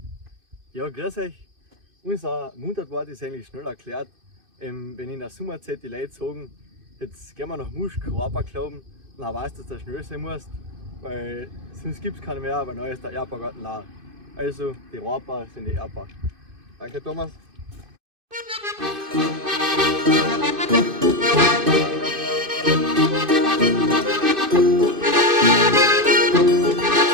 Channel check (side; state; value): left; late; 2.5 ms